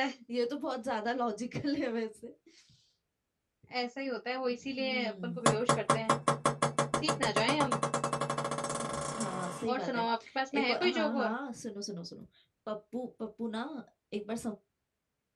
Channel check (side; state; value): both; identical; correlation 1.00